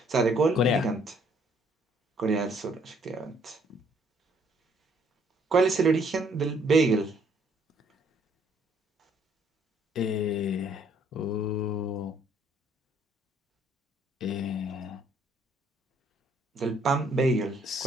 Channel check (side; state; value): both; normal; correlation 0.64